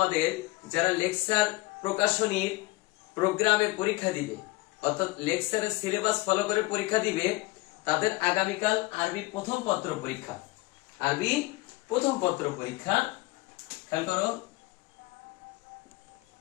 যারা লেকচার প্রকাশনীর প্রোগ্রামে পরীক্ষা দিবে অর্থাৎ লেকচারের সিলেবাস ফলো করে পরীক্ষা দিবে, তাদের আগামীকাল আরবি প্রথম পত্র পরীক্ষা। আরবি প্রথম পত্র পরীক্ষা, খেয়াল করো,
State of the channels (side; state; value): right; quieter; 21.2 dB